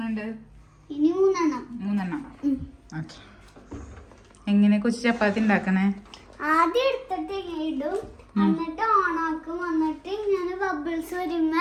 മൂന്നെണ്ണം. ഓക്കെ. എങ്ങനെ കൊച്ചു ചപ്പാത്തി ഉണ്ടാക്കണേ? ആദ്യം എടുത്തിട്ട് ഇടും, എന്നിട്ട് ഓണാക്കും, എന്നിട്ട് ഇങ്ങനെ ബബിൾസ്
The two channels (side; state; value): both; identical; correlation 1.00